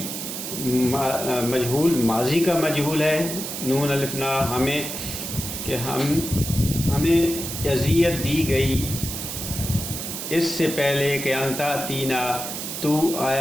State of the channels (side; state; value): right; noise; hiss, 6 dB below the sound